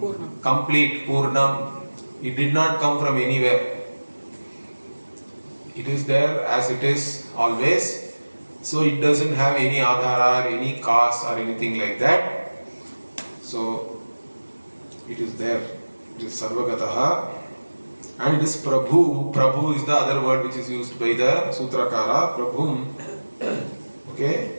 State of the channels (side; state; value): both; inverted; correlation -1.00